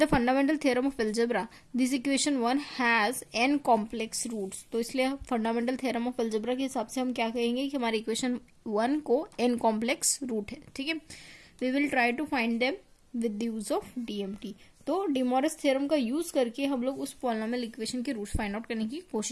fundamental theorem of algebra this equation 1 has n complex roots. तो इसलिए फंडामेंटल थ्योरम ऑफ एल्जेब्रा के हिसाब से हम क्या कहेंगे कि हमारी इक्वेशन 1 को n कॉम्प्लेक्स रूट है। ठीक है, we will try to find them with the use of DMT. तो डी मॉरिस थ्योरम का यूज करके हम लोग उस पॉलिनोमियल इक्वेशन के रूट्स फाइंड आउट करने की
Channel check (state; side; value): identical; both; correlation 1.00